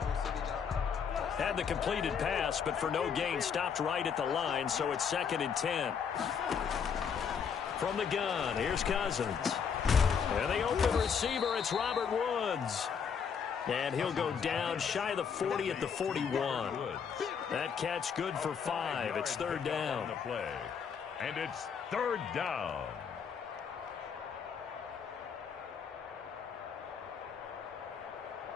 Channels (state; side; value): quieter; right; 6.8 dB